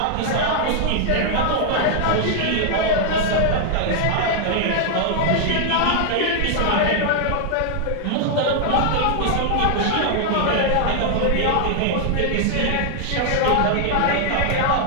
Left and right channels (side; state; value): both; different; correlation 0.00